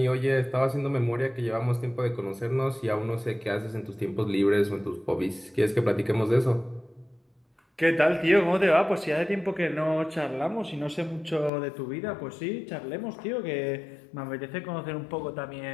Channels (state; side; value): drops out; right; at 11.5 s